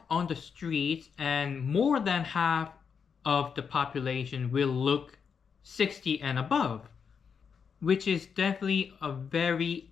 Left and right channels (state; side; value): quieter; right; 6.4 dB